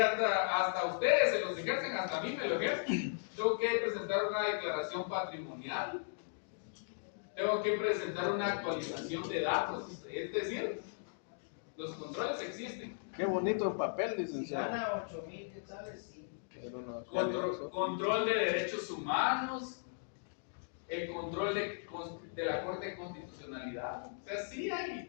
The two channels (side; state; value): right; silent; digital silence